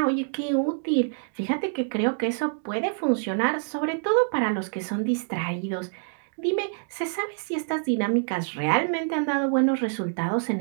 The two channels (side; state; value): left; silent; digital silence